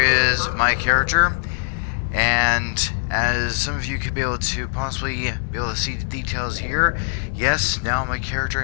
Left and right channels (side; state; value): right; silent; 64 dB below the other